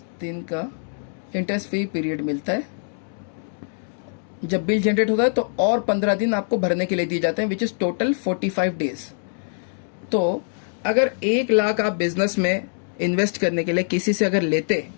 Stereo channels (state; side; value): silent; right; digital silence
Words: दिन का इंटरेस्ट फ्री पीरियड मिलता है। जब बिल जनरेट होता है तो और 15 दिन आपको भरने के लिए दिए जाते हैं, विच इज टोटल 45 डेज। तो अगर 1 लाख आप बिजनेस में इन्वेस्ट करने के लिए किसी से अगर लेते,